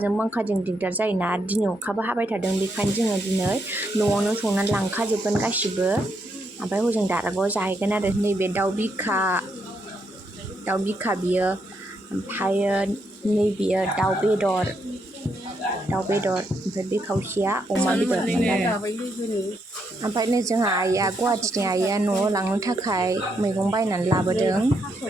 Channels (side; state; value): both; normal; correlation 0.78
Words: बांखाजों दिगदार जायोना दिनै अखाबो हाबाय थादों बेखायनो जोङो दिनै न'आवनो संनानै लांखाजोबगोन गासिबो ओमफ्राय हजों दारागाव जाहैगोन आरो नैबे दाउ बिखा बियो ओमफ्रायो नैबेयो दाउ बेदर ओमफ्राय बे खावसेया अमा बेदरमोन आरो ओमफ्राय नै जोंहा आइया गुवाहाटिनि आइया न'आव लांनो थाखाय मैगं बायनानै लाबोदों